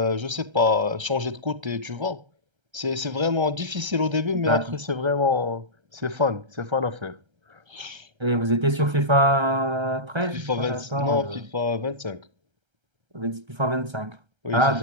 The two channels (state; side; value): late; left; 1.3 ms